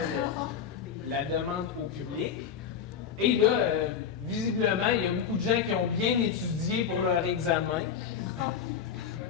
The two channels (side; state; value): right; quieter; 7.6 dB